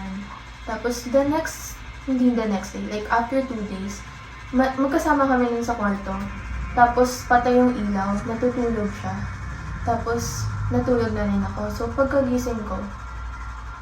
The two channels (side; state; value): both; identical; correlation 1.00